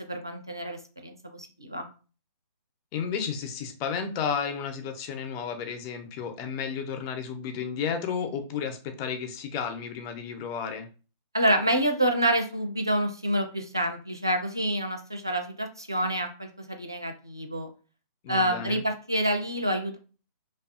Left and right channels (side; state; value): both; inverted; correlation -0.52